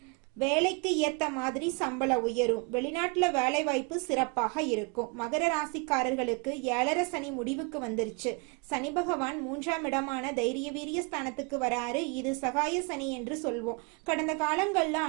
வேலைக்கு ஏத்த மாதிரி சம்பளம் உயரும். வெளிநாட்டுல வேலை வாய்ப்பு சிறப்பாக இருக்கும். மகர ராசிக்காரர்களுக்கு 7.5 சனி முடிவுக்கு வந்துருச்சு. சனி பகவான் 3ஆம் இடமான தைரிய வீரிய ஸ்தானத்துக்கு வராரு. இது சகாய சனி என்று சொல்வோம். கடந்த காலங்கள்ல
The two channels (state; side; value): quieter; left; 32.2 dB